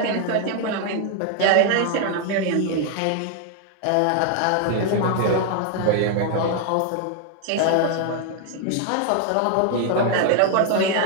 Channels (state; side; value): different; both; correlation 0.00